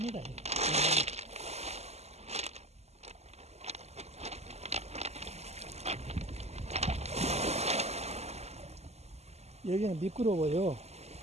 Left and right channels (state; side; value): late; left; 0.31 ms